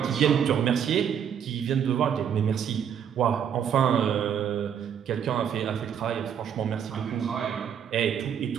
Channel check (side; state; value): left; quieter; 8.4 dB